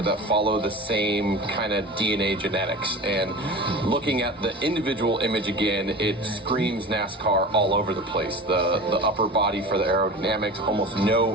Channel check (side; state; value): both; normal; correlation 0.34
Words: that follow the same kind of DNA genetics. And looking at the individual image again, it screams NASCAR all over the place. The upper body for the aerodynamics, almost